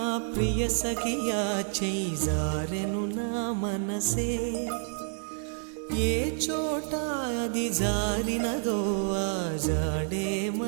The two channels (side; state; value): left; silent; 59 dB below the other